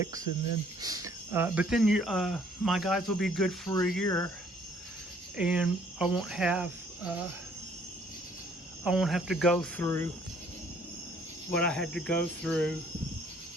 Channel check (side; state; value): both; normal; correlation 0.61